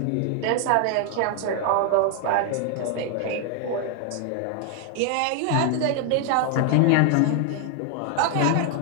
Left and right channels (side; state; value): both; different; correlation 0.00